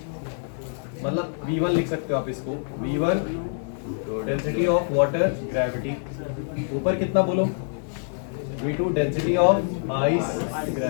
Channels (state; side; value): silent; right; digital silence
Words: मतलब V1 लिख सकते हो आप इसको, V1 density of water gravity, ऊपर कितना बोलो? V2 density of ice